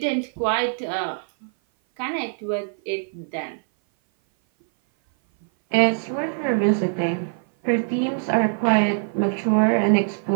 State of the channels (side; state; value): left; silent; 57 dB below the other